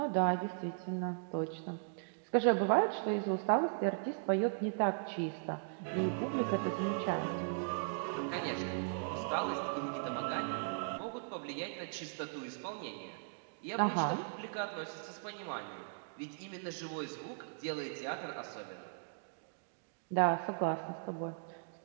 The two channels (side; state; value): left; silent; digital silence